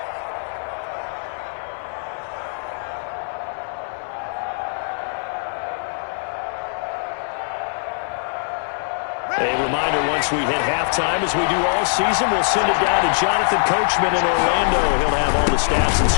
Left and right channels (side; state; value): right; silent; 56 dB below the other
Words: A reminder, once we hit halftime, as we do all season, we'll send it down to Jonathan Coachman in Orlando. He'll have all the stats and